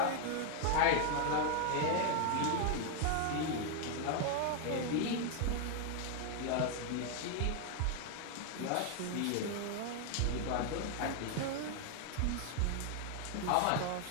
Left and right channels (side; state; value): both; different; correlation 0.00